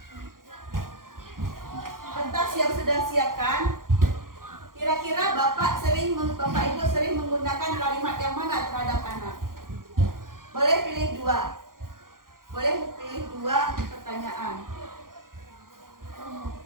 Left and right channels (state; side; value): late; left; 0.91 ms